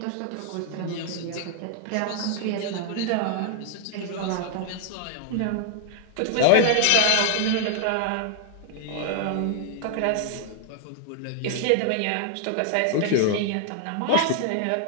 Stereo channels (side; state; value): both; different; correlation 0.00